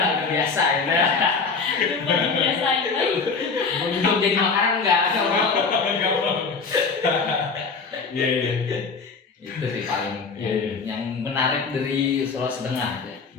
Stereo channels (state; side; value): quieter; right; 4.8 dB